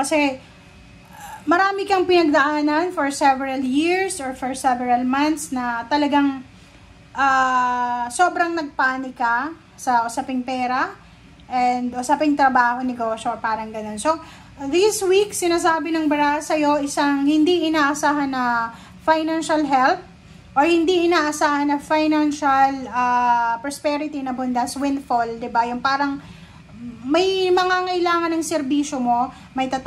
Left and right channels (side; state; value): both; identical; correlation 1.00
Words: marami kang pinagdaanan for several years or for several months na talagang sobrang nagpanik ka sa usaping pera and usaping trabaho, negosyo, parang ganun. So, this week, sinasabi ng bara sa'yo isang hindi inaasahan na financial help or hindi inaasahan na financial prosperity na bundas, windfall, diba? Yung parang may mga ngailangan ng serbisyo mo, may